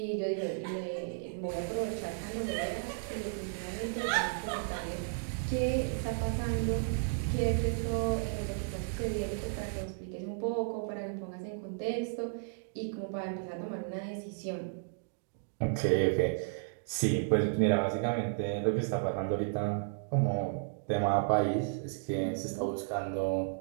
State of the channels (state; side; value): silent; left; digital silence